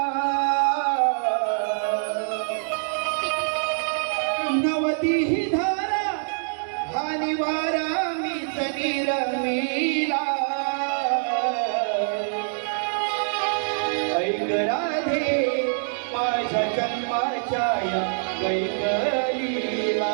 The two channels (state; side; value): silent; left; digital silence